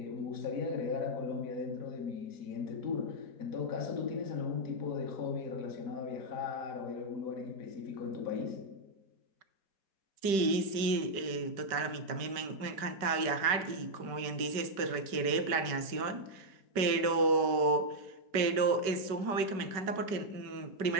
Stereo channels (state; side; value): late; left; 5.1 ms